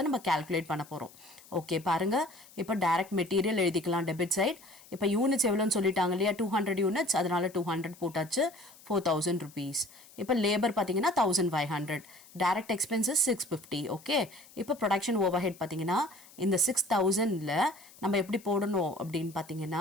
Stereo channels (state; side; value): noise; left; hiss, 23 dB below the sound